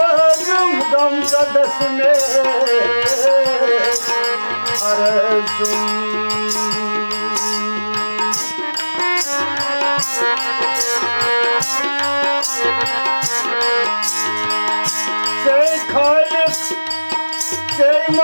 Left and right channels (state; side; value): inverted; both; correlation -1.00